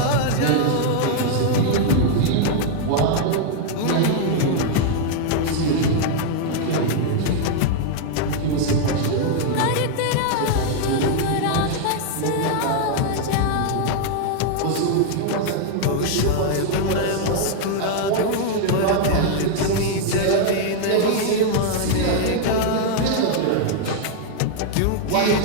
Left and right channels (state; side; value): different; both; correlation 0.00